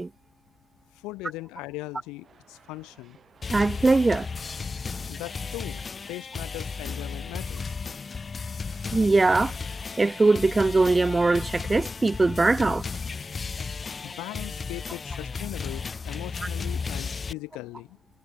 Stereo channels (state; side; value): normal; both; correlation 0.93